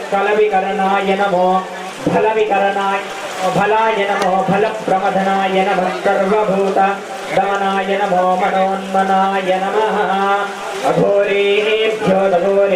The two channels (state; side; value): identical; both; correlation 1.00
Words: कलविकरणाय नमो फलविकरणाय फलाय नमो फलप्रमथनाय नमः सर्वभूत दमनाय नमो मनोन्मनाय नमः अघोरेभ्यो